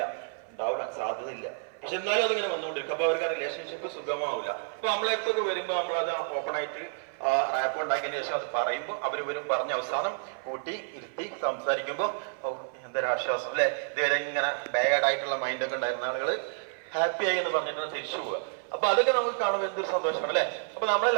ഉണ്ടാവില്ല, സാധ്യതയില്ല, പക്ഷെ എന്നാലും അതിങ്ങനെ വന്നുകൊണ്ടിരിക്കും. അപ്പൊ അവർക്ക് ആ റിലേഷൻഷിപ്പ് സുഖമാവില്ല. അപ്പൊ നമ്മളെടുത്തൊക്കെ വരുമ്പോൾ നമ്മളത് ഓപ്പൺ ആയിട്ട് റാപ്പ് ഉണ്ടാക്കിയതിന് ശേഷം അത് പറയുമ്പോൾ അവരും പറഞ്ഞ അവസാനം കൂട്ടി ഇരുത്തി സംസാരിക്കുമ്പോൾ എന്തൊരാശ്വാസം അല്ലെ. ഇതുവരെ ഇങ്ങനെ ബാഡ് ആയിട്ടുള്ള മൈൻഡൊക്കെ ഉണ്ടായിരുന്ന ആളുകൾ ഹാപ്പി ആയി എന്ന് പറഞ്ഞിട്ടാണ് തിരിച്ചു പോവുക. അപ്പൊ അതൊക്കെ നമുക്ക് കാണുമ്പോൾ എന്തൊരു സന്തോഷമാണ് അല്ലെ. അപ്പൊ നമ്മുടെ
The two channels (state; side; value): silent; left; 55 dB below the other